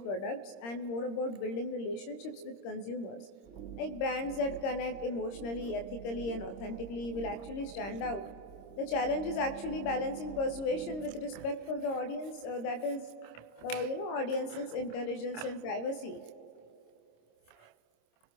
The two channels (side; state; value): right; late; 26 ms